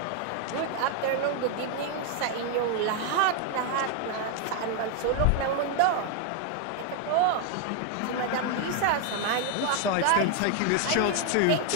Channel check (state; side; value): different; both; correlation 0.01